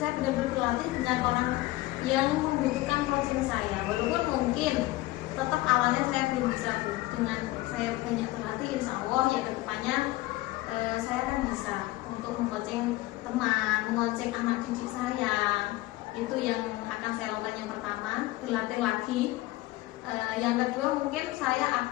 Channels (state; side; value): quieter; right; 18.4 dB